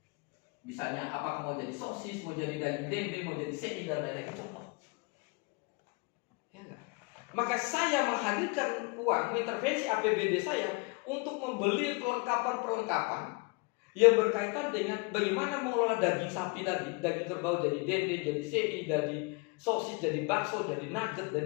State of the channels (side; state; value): right; quieter; 29.8 dB